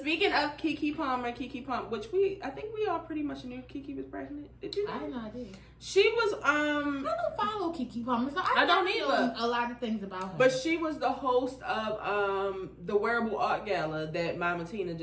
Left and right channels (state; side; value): identical; both; correlation 1.00